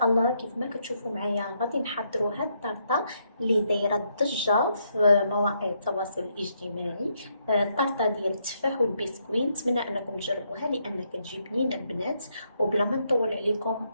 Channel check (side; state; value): both; inverted; correlation -0.76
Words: الله كيف ما كتشوفوا معايا غادي نحضروا هاد الطرطة اللي دايرة الضجة في مواقع التواصل الاجتماعي. الطرطة ديال التفاح والبسكويت، نتمنى أنكم تجربوها لأنها كتجي بنينة البنات. وبلا ما نطول عليكم